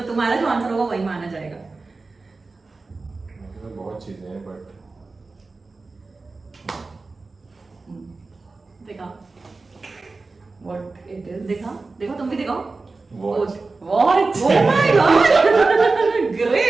तुम्हारा जो आंसर होगा वही माना जाएगा. बहुत चीजें हैं बट देखा What it is? देखो तुम भी दिखाओ. What? What? Oh my God!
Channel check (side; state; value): left; quieter; 3.8 dB